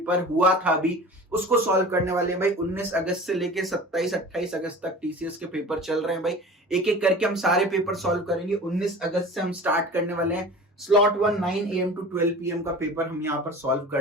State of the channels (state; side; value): normal; both; correlation 0.39